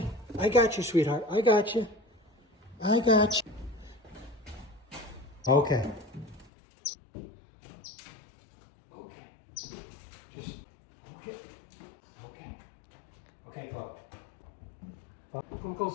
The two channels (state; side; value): drops out; right; at 6.5 s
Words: I got you, sweetheart. I got you. I got you. Okay. Okay. Just okay. Okay. Okay, Chloe. Come